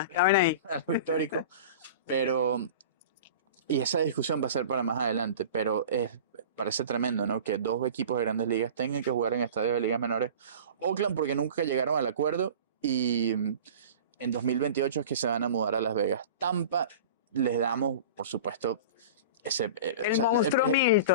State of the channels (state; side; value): inverted; both; correlation -0.37